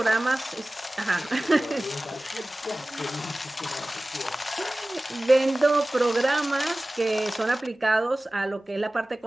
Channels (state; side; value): normal; both; correlation 0.98